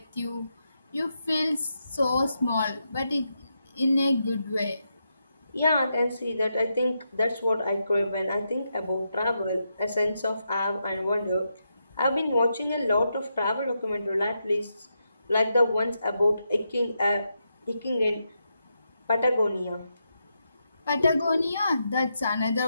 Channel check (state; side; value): inverted; both; correlation -0.84